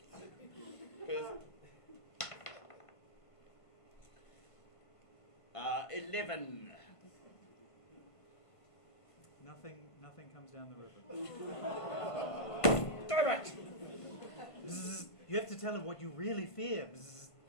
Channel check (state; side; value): late; right; 1.5 ms